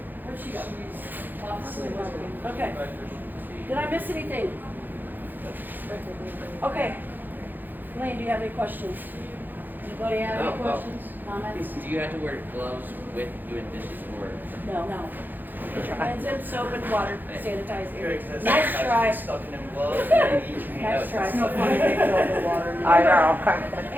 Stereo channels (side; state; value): left; late; 0.088 ms